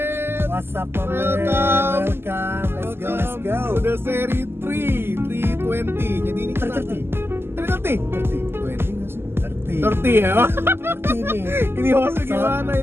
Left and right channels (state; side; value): late; left; 0.12 ms